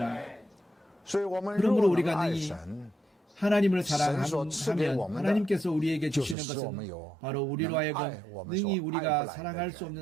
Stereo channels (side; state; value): left; drops out; at 6.4 s